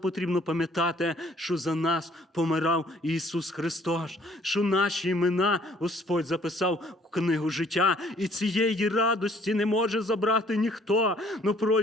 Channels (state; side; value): normal; both; correlation 0.60